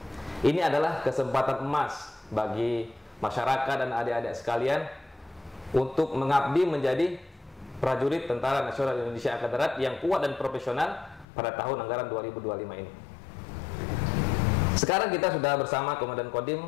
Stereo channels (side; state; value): right; drops out; at 11.2 s